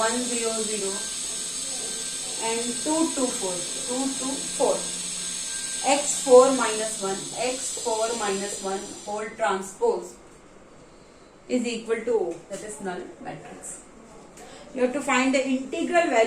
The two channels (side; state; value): both; identical; correlation 1.00